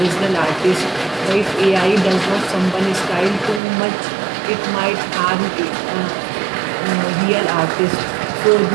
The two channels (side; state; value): left; drops out; at 3.6 s